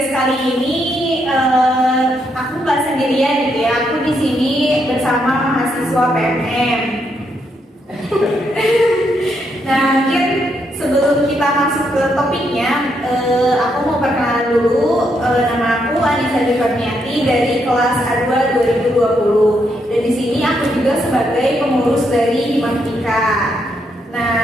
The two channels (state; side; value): normal; both; correlation 0.77